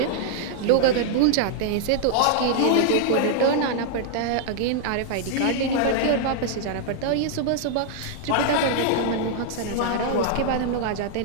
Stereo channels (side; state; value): both; different; correlation -0.01